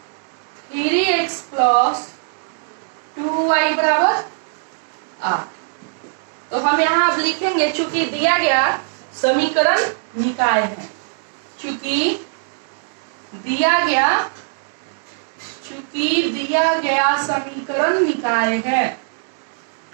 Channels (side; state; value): left; silent; digital silence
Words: 3x प्लस 2y बराबर 8। तो हम यहाँ अब लिखेंगे, चूंकि दिया गया समीकरण निकाय है, चूंकि दिया गया समीकरण निकाय है,